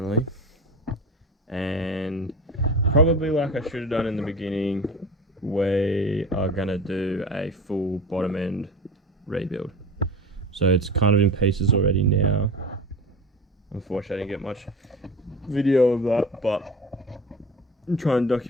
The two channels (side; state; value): both; normal; correlation 0.32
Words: and probably like I should have done in the beginning, we are going to do a full bottom end rebuild. So it's kind of in pieces already now. Unfortunately, I didn't get much video of that, but I'm trying to